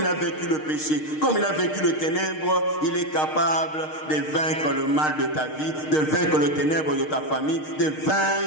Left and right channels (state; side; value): late; right; 6.5 ms